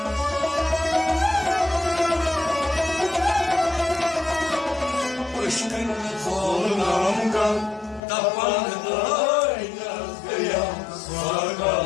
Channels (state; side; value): drops out; right; at 8.0 s